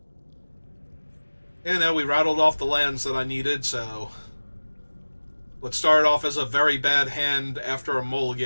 Yeah, no, we rattled off the lands that I needed, so... What started off as a very bad hand after a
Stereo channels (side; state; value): both; inverted; correlation -1.00